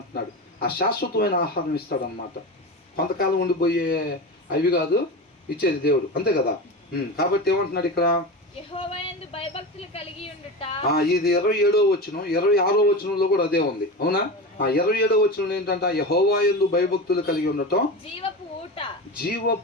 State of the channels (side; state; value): both; normal; correlation 0.25